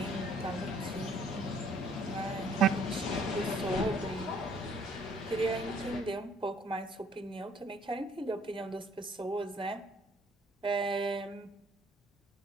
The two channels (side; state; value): both; normal; correlation 0.61